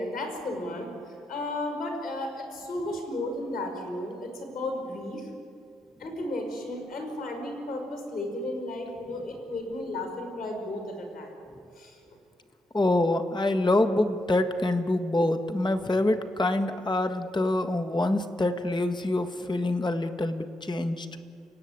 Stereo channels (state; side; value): normal; both; correlation 0.83